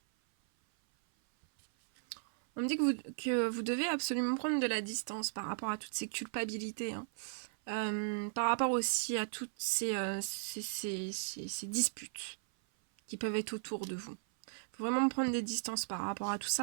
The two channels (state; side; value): silent; left; 53 dB below the other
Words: On me dit que vous devez absolument prendre de la distance par rapport à toutes ces culpabilités. Hein. Par rapport aussi à toutes ces disputes qui peuvent être autour de vous. Il faut vraiment prendre des distances par rapport à tout